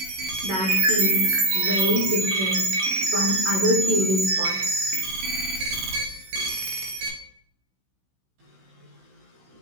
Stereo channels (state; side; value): late; left; 16 ms